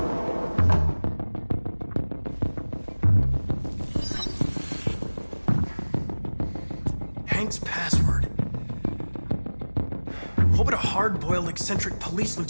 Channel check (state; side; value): inverted; both; correlation -1.00